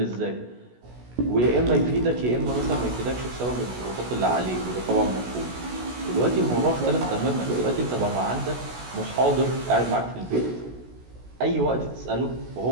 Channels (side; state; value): left; late; 16 ms